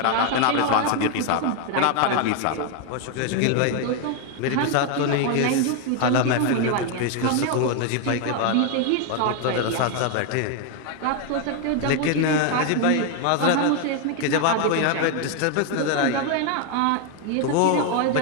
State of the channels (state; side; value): different; both; correlation 0.01